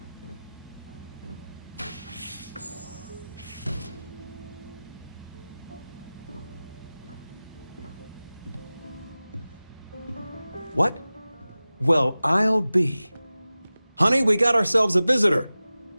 What? Well, I'll be. Honey, we got ourselves a visitor.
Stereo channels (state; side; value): inverted; both; correlation -0.97